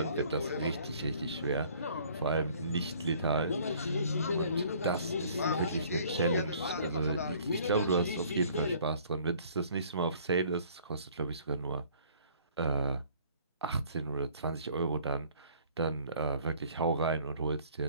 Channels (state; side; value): inverted; both; correlation -0.56